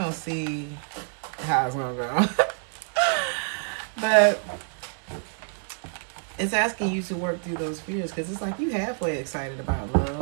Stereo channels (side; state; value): left; silent; 60 dB below the other